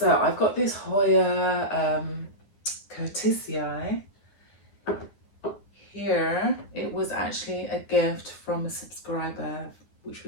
I've got this Hoya Curtisii here. It was actually a gift from a subscriber, which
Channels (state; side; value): late; right; 9.7 ms